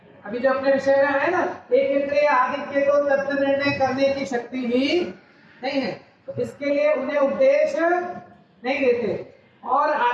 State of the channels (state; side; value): identical; both; correlation 1.00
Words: जो अपने विषय में है ना, एक इंद्रिय आदित्य को तत्व निर्णय करने की शक्ति ही नहीं है, तो इसके लिए उन्हें उपदेश नहीं देते। और